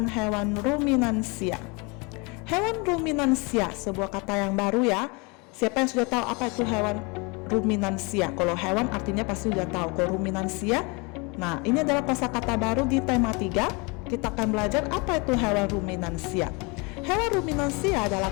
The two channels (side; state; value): right; quieter; 29.1 dB